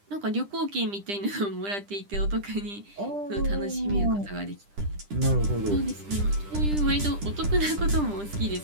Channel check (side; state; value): left; late; 10 ms